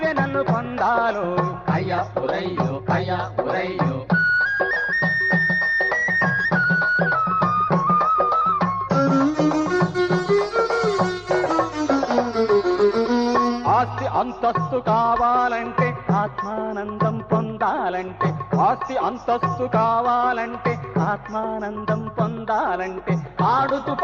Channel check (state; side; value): identical; both; correlation 1.00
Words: పొందాలో అయ్యా ఒరయ్యో అయ్యా ఒరయ్యో ఆస్తి అంతస్తు కావాలంటే ఆత్మానందం పొందాలంటే ఆస్తి అంతస్తు కావాలంటే ఆత్మానందం పొందాలంటే ఆడుతూ